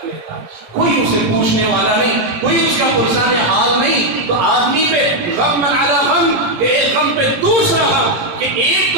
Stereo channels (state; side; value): late; left; 17 ms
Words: لیتا. کوئی اسے پوچھنے والا نہیں، کوئی اس کا پرسان حال نہیں، تو آدمی پہ غم علی غم، کہ ایک غم پہ دوسرا غم، کہ ایک